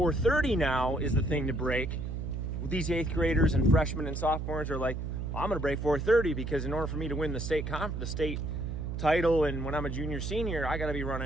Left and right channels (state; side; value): noise; right; hum, 4 dB below the sound